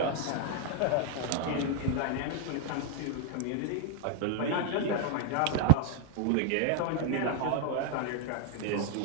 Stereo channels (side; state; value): both; different; correlation 0.00